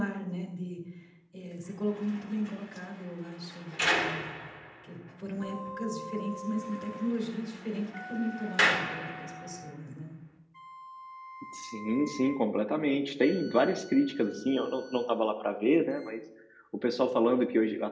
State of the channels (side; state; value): both; identical; correlation 1.00